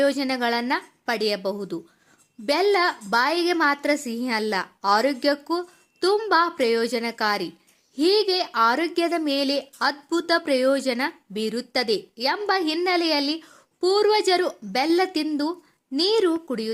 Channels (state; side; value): identical; both; correlation 1.00